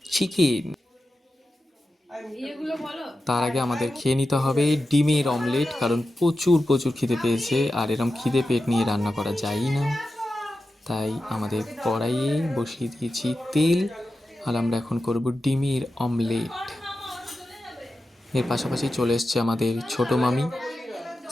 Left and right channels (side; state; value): both; normal; correlation 0.92